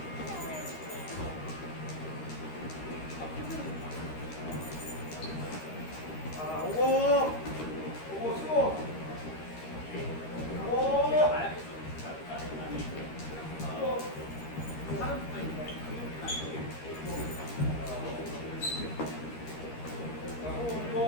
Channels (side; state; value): right; late; 13 ms